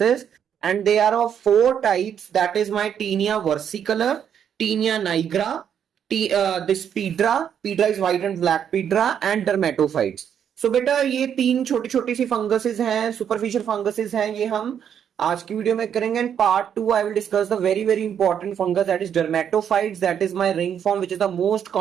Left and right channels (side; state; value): left; quieter; 8.6 dB